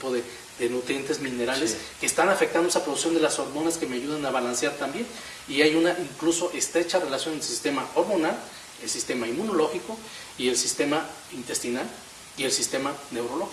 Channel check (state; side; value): identical; both; correlation 1.00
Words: de nutrientes minerales que están afectando esa producción de las hormonas que me ayudan a balancear también, y hay una incluso estrecha relación entre el sistema hormonal el sistema inmunológico y el sistema intestinal y el sistema